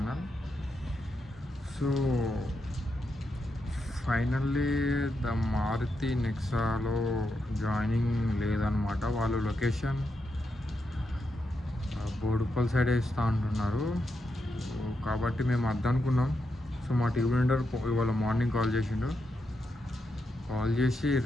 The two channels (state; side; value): normal; both; correlation 0.84